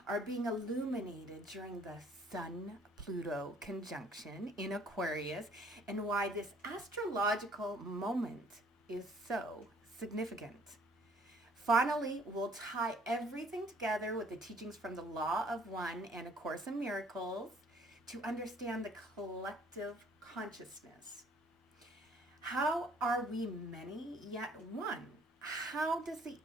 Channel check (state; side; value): normal; both; correlation 0.59